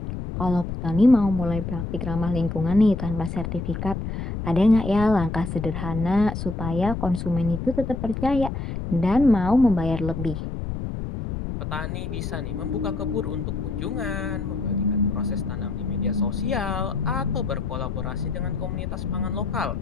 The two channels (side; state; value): left; noise; rumble, 5 dB below the sound